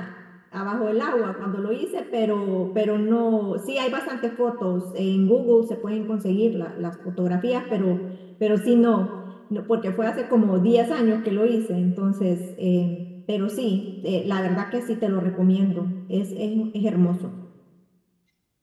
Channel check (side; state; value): both; identical; correlation 1.00